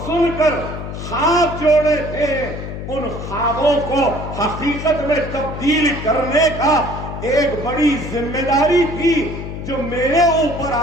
سن کر خواب جوڑے تھے، ان خوابوں کو حقیقت میں تبدیل کرنے کا ایک بڑی ذمہ داری تھی جو میرے اوپر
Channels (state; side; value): noise; left; hum, 8 dB below the sound